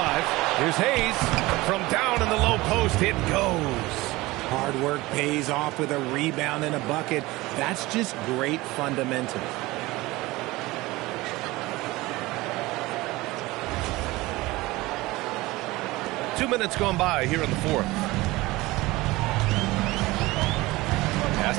Here's Hayes. From down in the low post, it goes. Hard work pays off with a rebound and a bucket. That's just great fundamentals. Two minutes gone by here in the 4th. Pass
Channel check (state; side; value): quieter; left; 20.2 dB